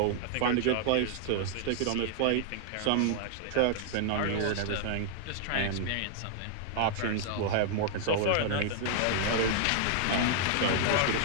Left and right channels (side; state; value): both; different; correlation 0.00